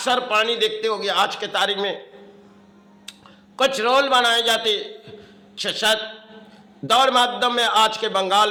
पानी देखते होंगे, आज के तारीख में कुछ रोल बनाए जाते, शायद दौर माध्यम में आज के बंगाल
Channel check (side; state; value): both; identical; correlation 1.00